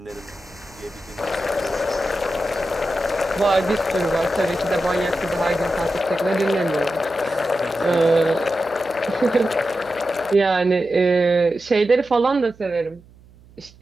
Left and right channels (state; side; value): noise; right; hum, 25 dB below the sound